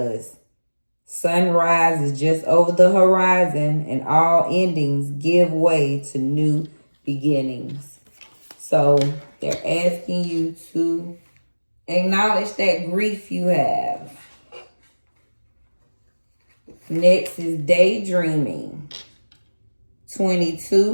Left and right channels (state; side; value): inverted; both; correlation -1.00